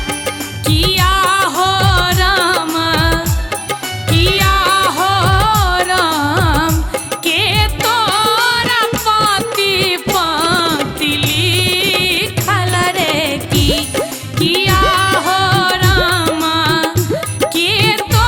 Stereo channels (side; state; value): both; identical; correlation 1.00